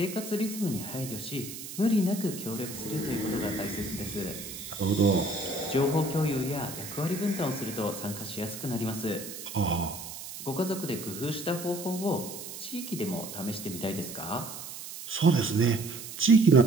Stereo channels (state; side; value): noise; right; hiss, 10 dB below the sound